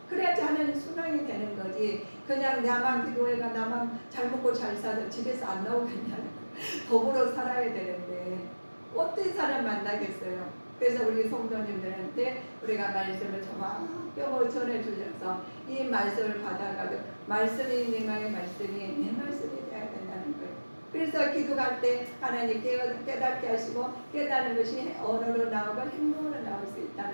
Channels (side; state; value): both; inverted; correlation -1.00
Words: 그래야지 하나님 순항이 되는 거지. 그냥 나만 기도해가 나만 잘 먹고 잘 살아 집에서 안 나오겠냐는 더불어 살아야 되는데 어떤 사람 만나겠어요. 그래서 우리 성도님들한테 우리가 말씀을 정확하게 전해주셔서 이 말씀을 받아가지고 말씀이 내 마음의 말씀이 내 말씀이 되어야 된다는 거예요. 그래서 기도할 때 하나님 깨닫게 하시고 깨닫는 것이 언어로 나오고 행동으로 나올 수